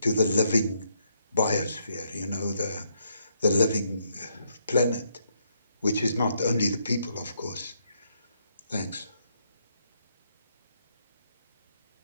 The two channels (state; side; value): inverted; both; correlation -0.75